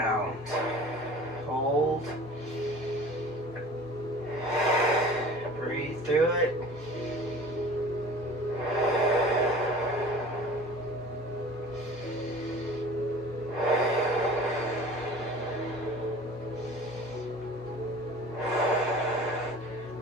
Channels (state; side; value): normal; both; correlation 0.43